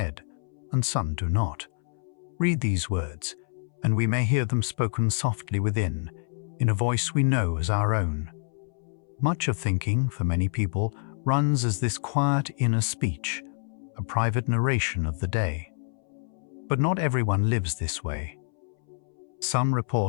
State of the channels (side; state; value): right; silent; 60 dB below the other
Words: and some do not. Read these words, and we may hear them spoken softly within, in a voice we know as our own. Much of thinking, for many people, runs as this quiet inner speech, a private narration of the day. But not everyone lives this way. Some